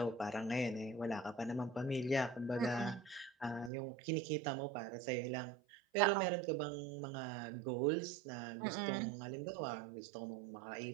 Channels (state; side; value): drops out; left; at 3.7 s